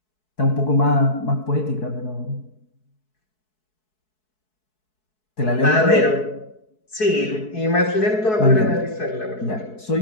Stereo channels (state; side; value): late; right; 4.7 ms